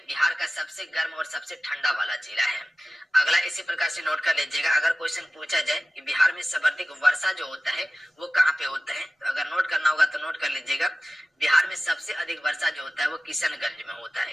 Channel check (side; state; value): both; normal; correlation 0.96